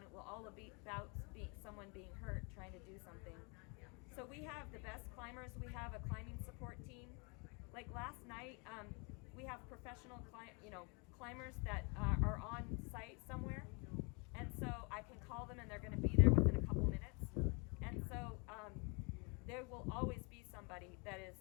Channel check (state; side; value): quieter; right; 31.8 dB